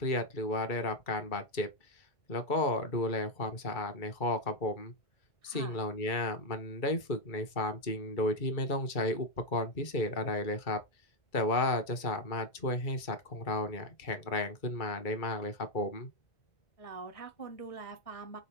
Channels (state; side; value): late; right; 2.3 ms